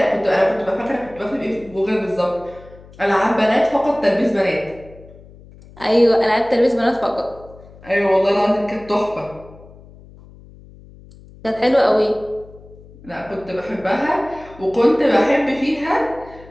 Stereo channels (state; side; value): noise; left; hum, 22 dB below the sound